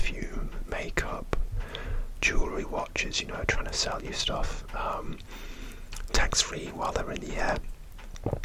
makeup, jewellery, watches, trying to sell you stuff tax-free while they're in the air.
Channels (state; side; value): identical; both; correlation 1.00